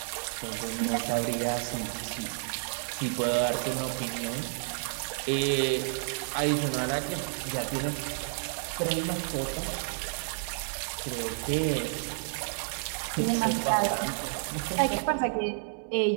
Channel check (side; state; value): left; silent; digital silence